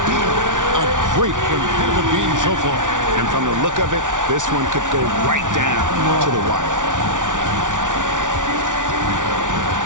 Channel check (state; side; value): late; left; 0.87 ms